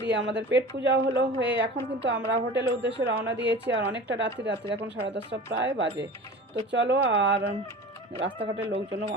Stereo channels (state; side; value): normal; both; correlation 0.37